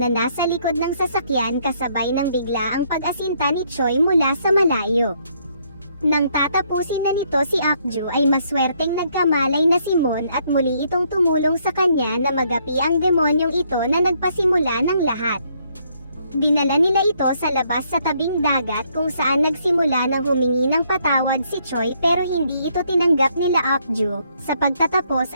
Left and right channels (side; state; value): both; inverted; correlation -0.70